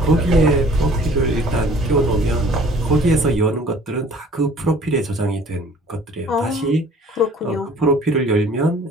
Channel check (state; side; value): normal; both; correlation 0.52